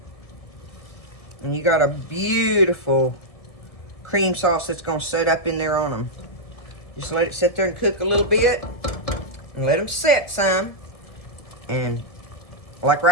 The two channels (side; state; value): right; late; 1.7 ms